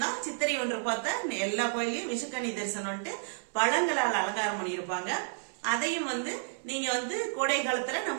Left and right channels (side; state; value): left; silent; 57 dB below the other